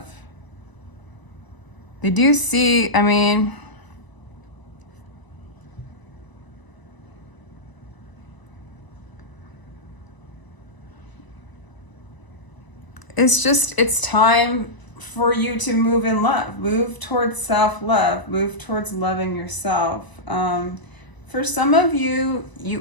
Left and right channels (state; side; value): late; right; 1.0 ms